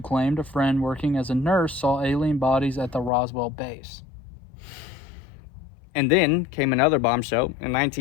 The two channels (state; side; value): drops out; right; at 3.1 s